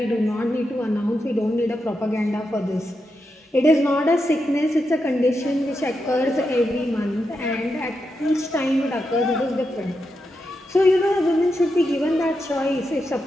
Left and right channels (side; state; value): both; normal; correlation 0.86